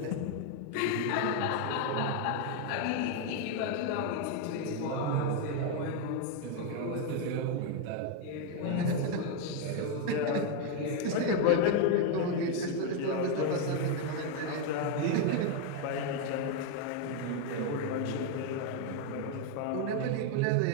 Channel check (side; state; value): both; different; correlation 0.01